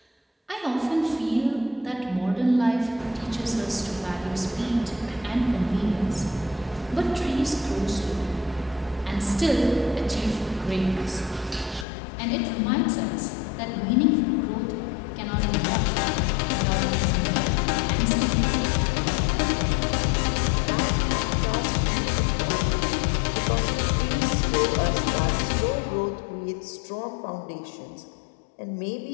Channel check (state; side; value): drops out; right; at 11.9 s